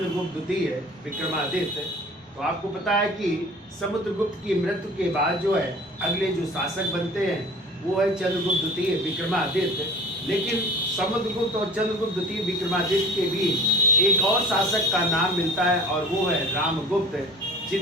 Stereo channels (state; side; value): normal; both; correlation 0.43